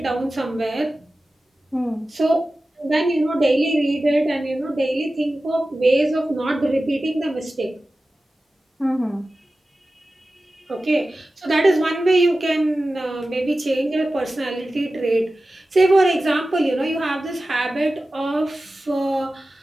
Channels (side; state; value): both; normal; correlation 0.95